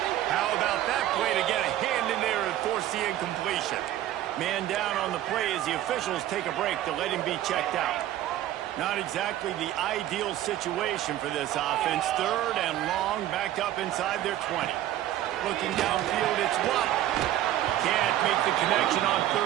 How about that play to get a hand in there and force the incompletion? Man down on the play as the officials take a break to let him be checked out. Not exactly the ideal situation for this offense. Third and long, backed up inside their 20. Looking downfield, it's Watt. Can't make the connection on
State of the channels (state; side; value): quieter; left; 13.2 dB